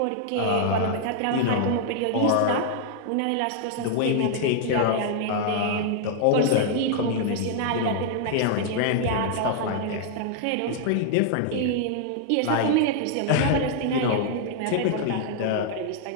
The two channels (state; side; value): different; both; correlation -0.01